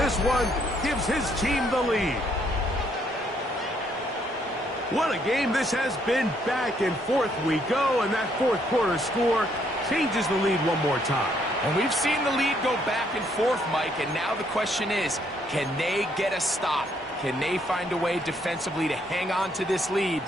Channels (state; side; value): normal; both; correlation 0.70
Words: one gives his team the lead. What a game this has been. Back and forth we go, and that fourth quarter score changes the lead one more time. And we've seen the lead go back and forth, Mike, and now the question is, can they get a stop? Can they find a way defensively to hang on to this lead